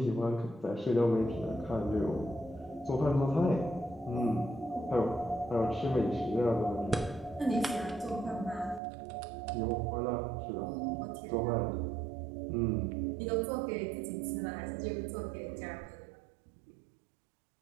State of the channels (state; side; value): drops out; left; at 8.8 s